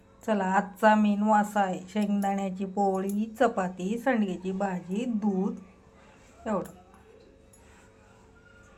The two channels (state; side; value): identical; both; correlation 1.00